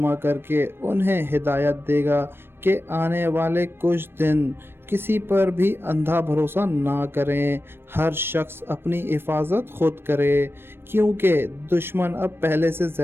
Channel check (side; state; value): left; late; 0.11 ms